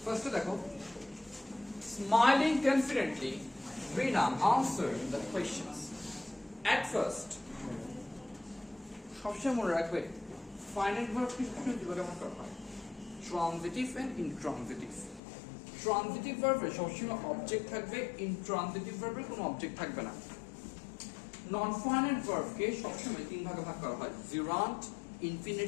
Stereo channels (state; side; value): drops out; right; at 15.2 s